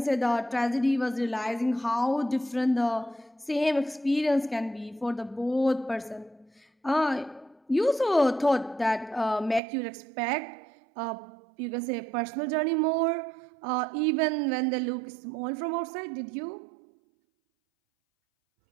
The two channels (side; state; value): left; drops out; at 9.6 s